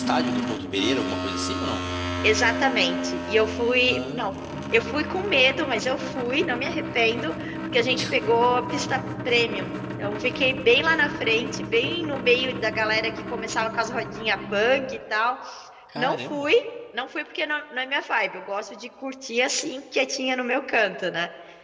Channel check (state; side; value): identical; both; correlation 1.00